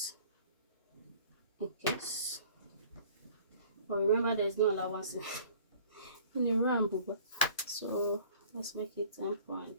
in case. But remember, there's no allowance in the round buba. So let's make it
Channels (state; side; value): inverted; both; correlation -0.51